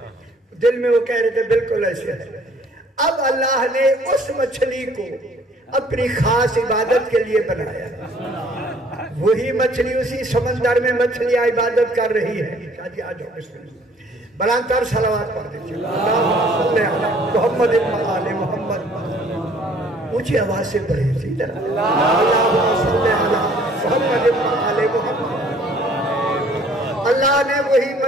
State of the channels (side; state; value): both; normal; correlation 0.57